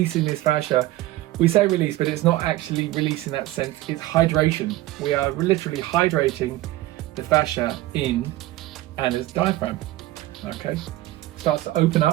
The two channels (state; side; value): quieter; left; 16.6 dB